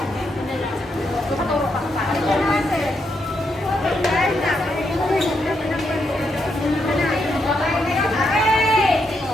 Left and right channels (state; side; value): normal; both; correlation 0.80